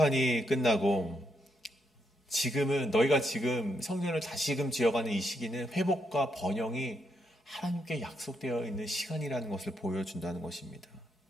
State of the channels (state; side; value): normal; both; correlation 0.79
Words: 끝나고 지금은, 너희가 지금 성전을 다시금 지어가는 이 시기는 회복과 번영이 하나님께 약속되어 있는 시간이라는 것을 보여준다는 것입니다.